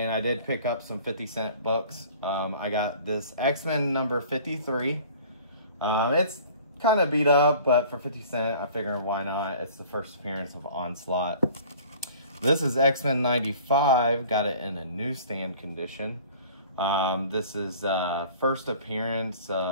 I did pick up some 50-cent books. I got this X-Men number 53. It's kind of beat up, but for 50 cents, I figured why not? It's the first appearance of Onslaught. This is X-Men 95, got it in a newsstand condition. This is first appearance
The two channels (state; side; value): inverted; both; correlation -0.48